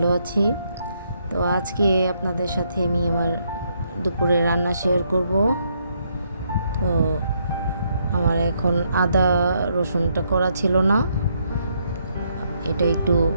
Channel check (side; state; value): both; inverted; correlation -0.75